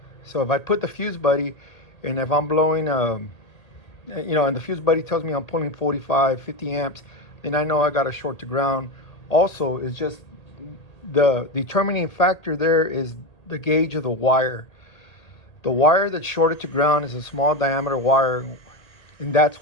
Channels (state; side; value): late; right; 1.8 ms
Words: So if I put the fuse buddy, and if I'm blowing and the fuse buddy tells me I'm pulling 45, 50 amps, then I know I got a short to ground. Also, it's just the determining factor there is the gauge of the wire. The wire that's shorted to ground is a small diameter wire, and that's